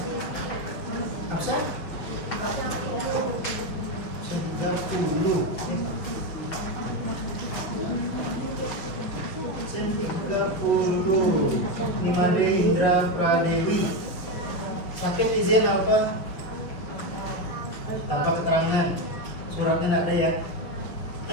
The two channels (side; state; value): right; late; 6.1 ms